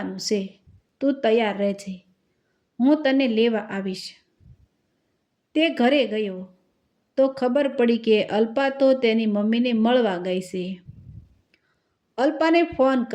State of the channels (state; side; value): identical; both; correlation 1.00